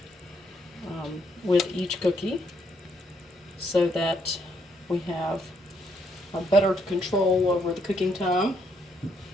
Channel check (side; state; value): both; normal; correlation 0.73